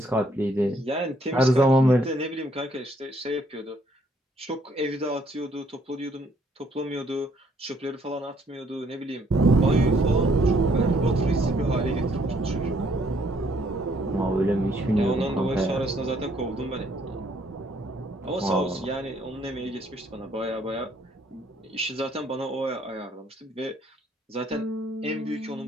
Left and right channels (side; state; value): both; normal; correlation 0.67